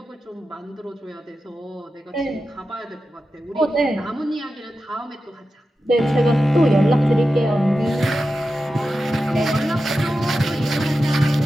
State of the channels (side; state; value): both; normal; correlation 0.92